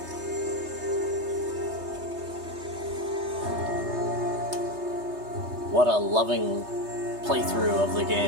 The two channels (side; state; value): left; late; 3.3 ms